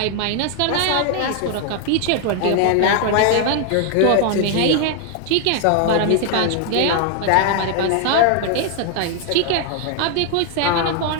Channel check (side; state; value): both; different; correlation 0.00